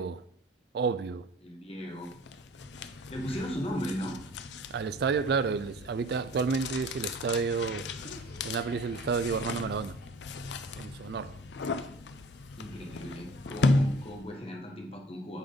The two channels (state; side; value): normal; both; correlation 0.46